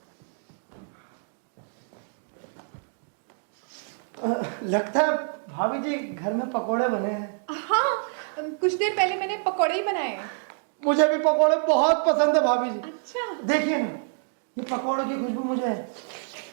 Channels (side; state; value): left; silent; digital silence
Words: लगता है भाभी जी घर में पकोड़े बने हैं। हाँ, कुछ देर पहले मैंने पकौड़े ही बनाए हैं। मुझे भी पकोड़े बहुत पसंद है भाभी जी। अच्छा, देखिए ना, ये पकोड़े की खुशबू मुझे